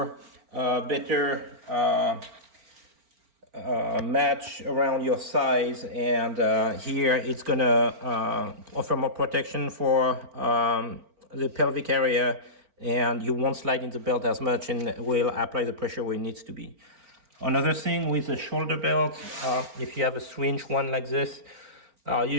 better match around your size, and here it's gonna offer more protection for the pelvic area, and you won't slide in the belt as much and will apply the pressure where it needs to be. Another thing with the shoulder belt, if you have a 3-inch one like this,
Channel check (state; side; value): late; left; 4.4 ms